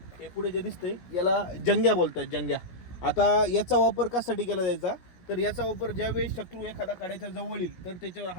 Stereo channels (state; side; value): late; right; 17 ms